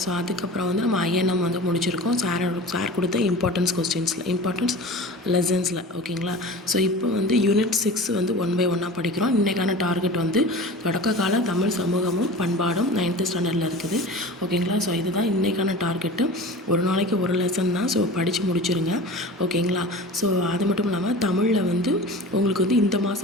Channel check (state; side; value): normal; both; correlation 0.36